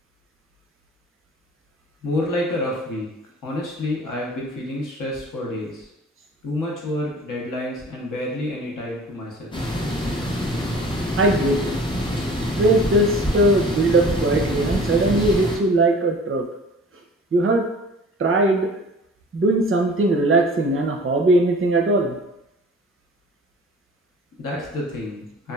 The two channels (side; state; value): both; normal; correlation 0.45